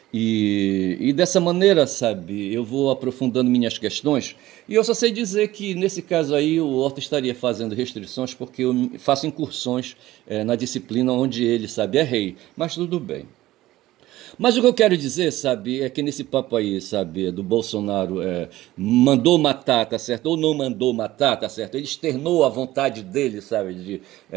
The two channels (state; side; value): quieter; left; 16.2 dB